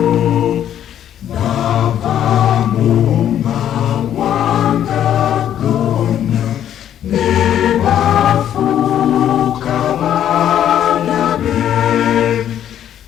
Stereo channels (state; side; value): quieter; right; 10.5 dB